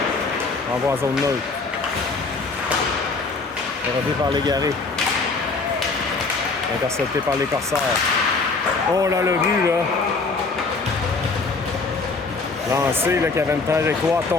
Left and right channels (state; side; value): quieter; right; 4.0 dB